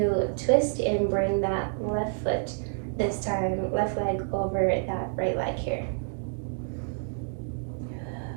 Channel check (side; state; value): left; silent; digital silence